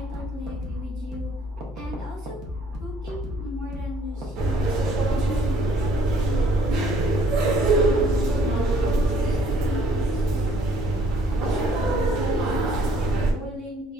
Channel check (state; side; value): normal; both; correlation 0.61